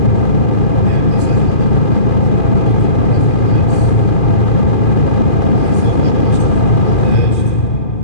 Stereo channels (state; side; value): late; right; 2.4 ms